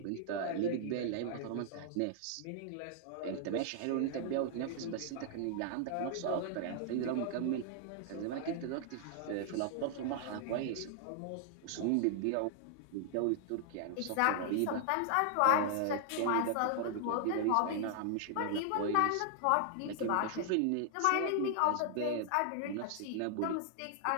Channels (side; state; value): both; different; correlation 0.00